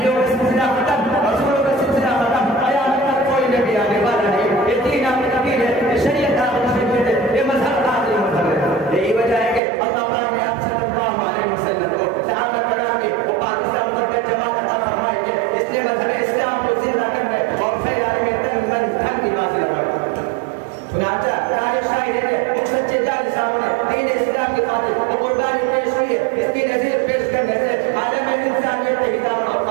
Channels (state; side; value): drops out; left; at 9.6 s